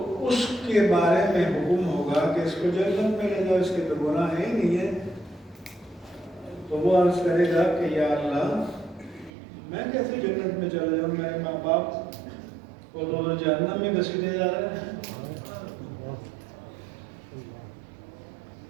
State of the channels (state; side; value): drops out; left; at 9.3 s